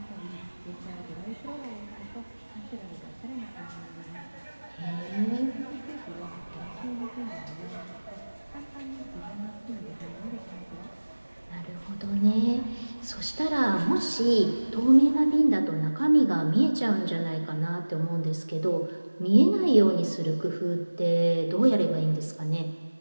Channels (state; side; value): inverted; both; correlation -1.00